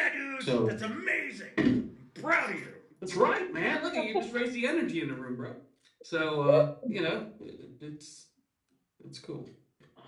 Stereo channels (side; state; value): both; identical; correlation 1.00